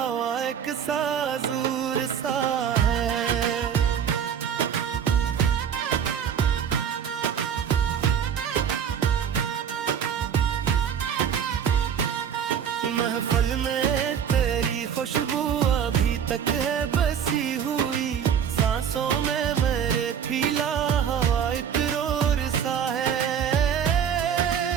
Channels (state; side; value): quieter; left; 8.2 dB